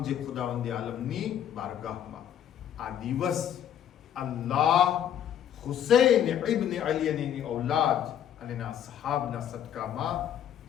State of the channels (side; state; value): right; quieter; 9.9 dB